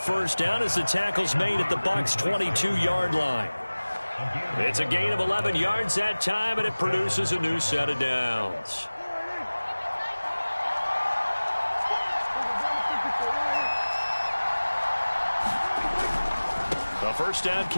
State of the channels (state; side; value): inverted; both; correlation -1.00